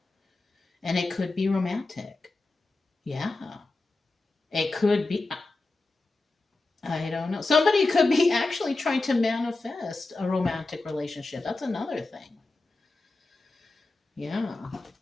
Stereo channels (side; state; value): right; quieter; 3.3 dB